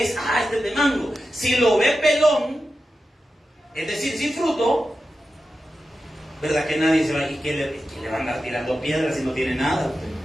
es. Este es de mango. Si lo ve pelón, es decir, sin fruto, ¿verdad? Que nadie se va, ¿y que le va a andar tirando piedras si no tiene nada usted?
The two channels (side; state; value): both; normal; correlation 0.91